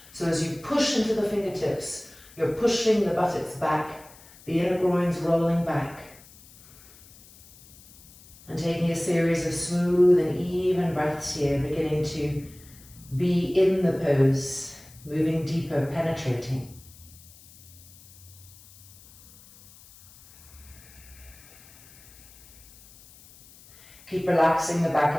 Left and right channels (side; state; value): left; noise; hiss, 23 dB below the sound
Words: So as you push into the fingertips, you're pushing the buttocks back, the inner groins rolling back. And taking a series of smooth and even breaths here, beginning to be in the pose, moving deeper, penetrating. Keep relaxing the